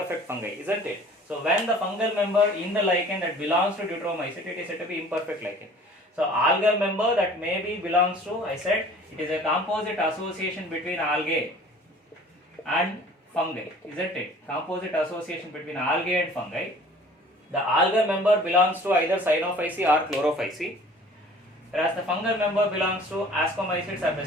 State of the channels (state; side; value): normal; both; correlation 0.49